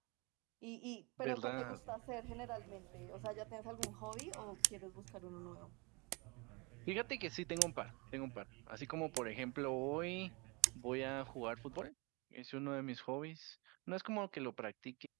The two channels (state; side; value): quieter; left; 28.3 dB